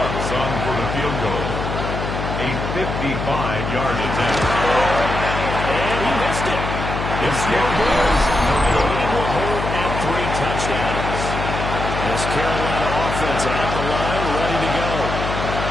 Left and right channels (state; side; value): noise; left; hum, 4 dB below the sound